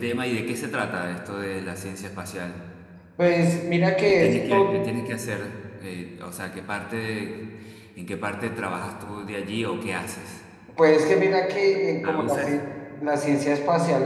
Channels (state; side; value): identical; both; correlation 1.00